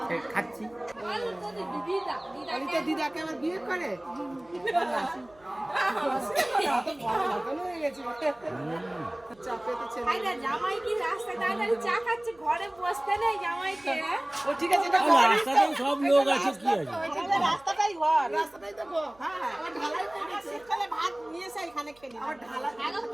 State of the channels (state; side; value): noise; right; hum, 29 dB below the sound